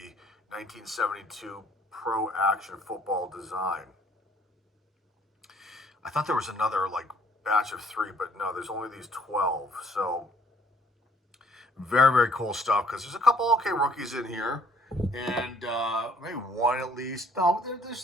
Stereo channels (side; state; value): both; normal; correlation 0.61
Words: 1972 Pro Action Football design. I thought there was another batch of 3, but no, there's only these 12. So very, very cool stuff because there's a couple okay rookies in here, and maybe one at least. No,